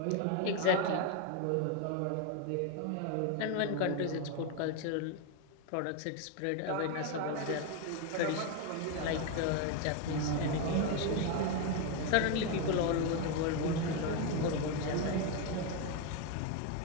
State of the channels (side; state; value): both; different; correlation 0.02